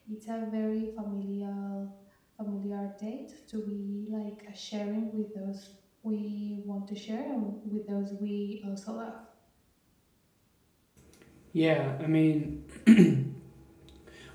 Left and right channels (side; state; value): both; identical; correlation 1.00